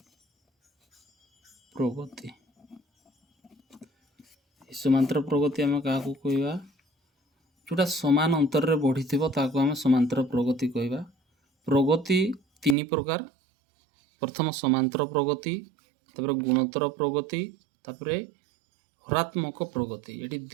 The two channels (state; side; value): drops out; left; at 12.8 s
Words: प्रगति। समांतर प्रगति आम क्या कहवा जोटा समान अंतर रे बढ़ी ताको आम समांतर प्रगति कहवा। प्रगति तीन प्रकार। प्रथम समांतर प्रगति, तापर गुणोत्तर प्रगति, तापर हरात्मक प्रगति। ये